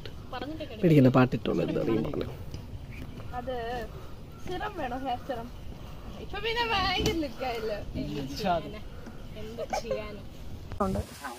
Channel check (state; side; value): identical; both; correlation 1.00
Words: പേടിക്കണ്ട പാട്ടിട്ടോളൂ എന്താണെങ്കിലും പറഞ്ഞു. അത് സിറം വേണോ? ഹെയർ സിറം ഇപ്പൊ പിന്നെ ഭയങ്കര ലുക്കായില്ലോ. എന്ത് ചെയ്യാനും